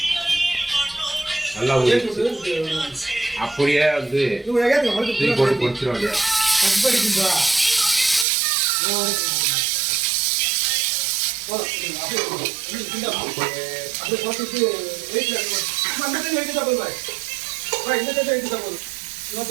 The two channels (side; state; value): left; drops out; at 8.2 s